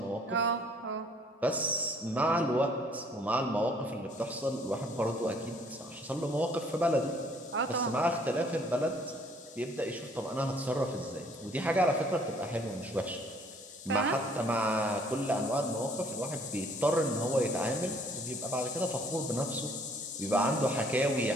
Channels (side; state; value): both; normal; correlation 0.60